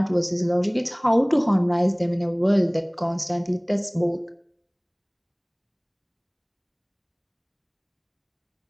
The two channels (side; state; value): both; identical; correlation 1.00